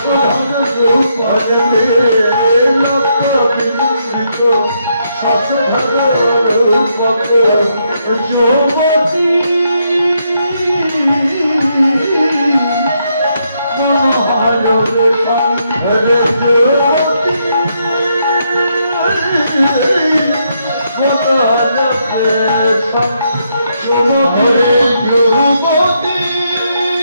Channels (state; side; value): inverted; both; correlation -0.77